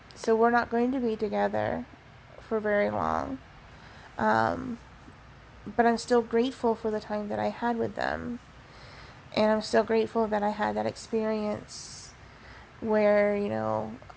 we're not going to be together for very long. But I'm still grateful for the time that I had with them. And I'm still grateful that I had that experience where,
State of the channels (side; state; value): both; identical; correlation 1.00